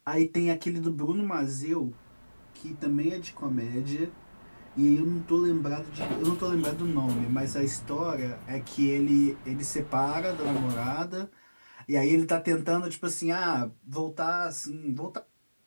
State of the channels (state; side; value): inverted; both; correlation -1.00